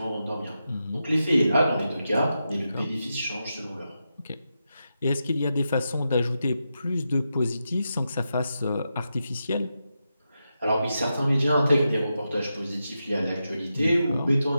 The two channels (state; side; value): inverted; both; correlation -0.88